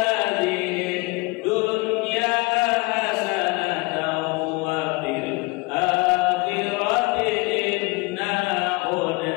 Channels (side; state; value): right; quieter; 26.1 dB